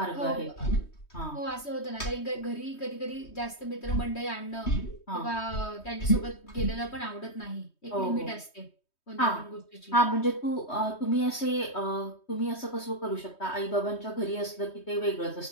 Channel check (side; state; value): right; late; 3.2 ms